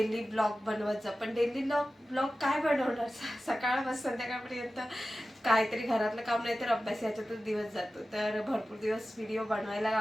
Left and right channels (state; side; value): normal; both; correlation 0.94